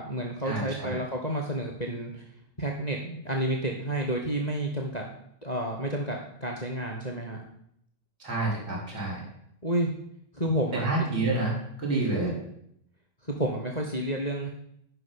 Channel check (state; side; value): late; right; 1.9 ms